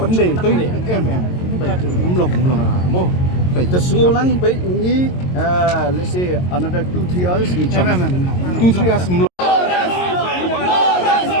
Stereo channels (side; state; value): right; late; 22 ms